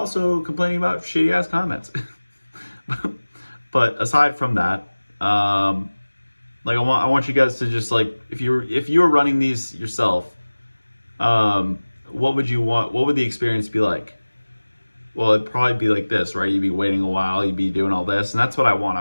complaining about shitty ass comments. But aside from that, like I want you guys to just like, if you were running these yourself, what would you want? What would the experience be like? well, it'd probably be like this, right? You'd be waiting a while, you'd be doing all this, and that's what I want. I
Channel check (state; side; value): inverted; both; correlation -1.00